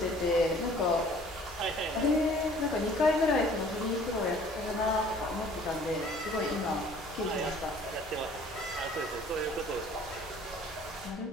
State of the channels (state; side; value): normal; both; correlation 0.53